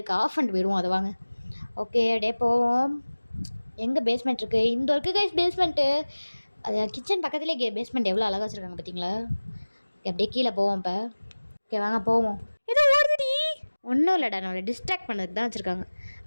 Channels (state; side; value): inverted; both; correlation -1.00